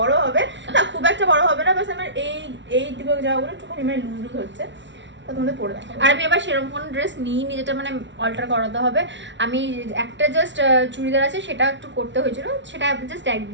হবে না, খুব একটা বড় হবে না, বাস আমার এই দিকে যাওয়াগুলো একটুখানি মানে লুজ হচ্ছে, তো তোমাদের পরে দেখাবো। আর আমি আবার সেরকম কোনো ড্রেস নিইনি যেটা মানে অল্টার করাতে হবে। আমি একটা জাস্ট চুড়িদার আছে, সেটা একটু করতে হয়েছিল, সেটা জাস্ট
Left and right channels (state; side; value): late; left; 0.53 ms